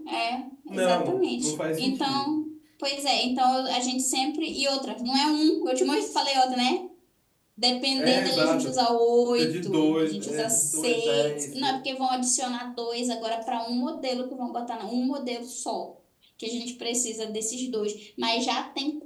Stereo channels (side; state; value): both; identical; correlation 1.00